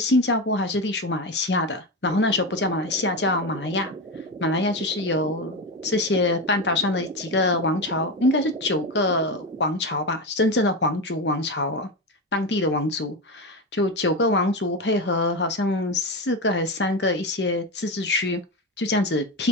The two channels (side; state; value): both; normal; correlation 0.17